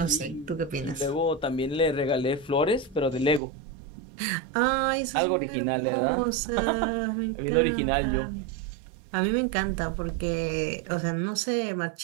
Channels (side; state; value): left; drops out; at 3.4 s